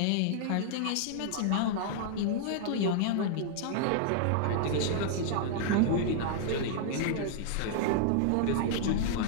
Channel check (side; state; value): both; different; correlation -0.01